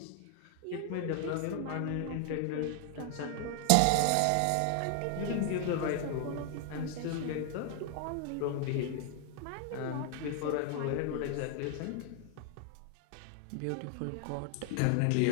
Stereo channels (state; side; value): different; both; correlation 0.00